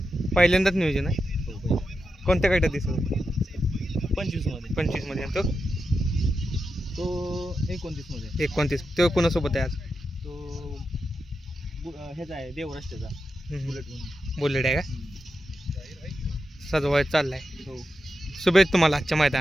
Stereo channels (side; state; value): both; normal; correlation 0.88